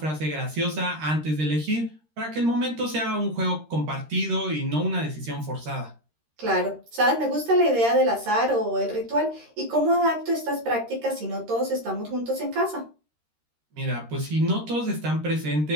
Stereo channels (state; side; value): late; left; 13 ms